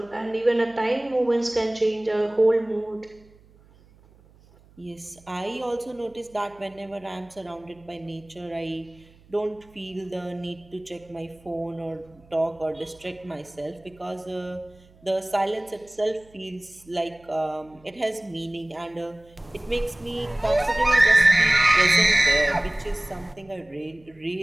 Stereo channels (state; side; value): noise; right; hum, 27 dB below the sound